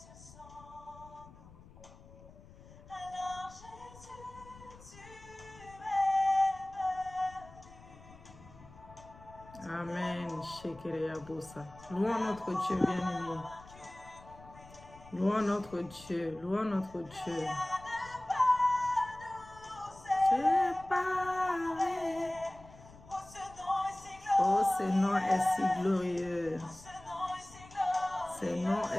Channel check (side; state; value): left; noise; rumble, 20 dB below the sound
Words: Amen. Shekereyabosa. Louons notre Dieu bien-aimé. Louons notre Dieu. Louons notre Dieu. Séparé. Oh, ce nom est si glorieux. Ce nom